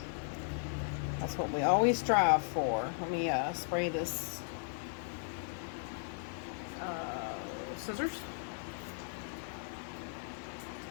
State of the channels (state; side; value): silent; right; 53 dB below the other